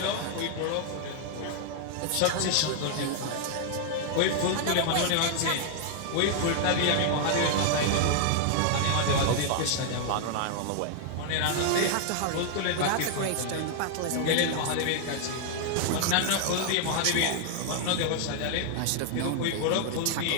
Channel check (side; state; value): both; different; correlation 0.00